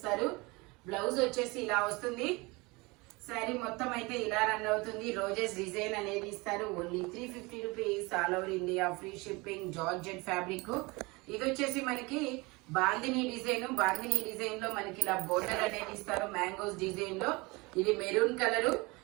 బ్లౌజ్ వచ్చేసి ఇలా వస్తుంది. శారీ మొత్తం అయితే ఇలా రన్ అవుతుంది. రోజెస్ డిజైన్ అనేది ఇస్తారు. Only 350 rupees, all over India, free shipping. Georgette fabric. ఇది వచ్చేసి మనకి బాందిని డిజైన్. బాందిని డిజైన్ లో మనకి ఇలా బోర్డర్ అనేది ఇస్తారు మ్యాంగోస్ డిజైన్ లో. ఇది మెరూన్ కలరు.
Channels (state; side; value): quieter; left; 24.9 dB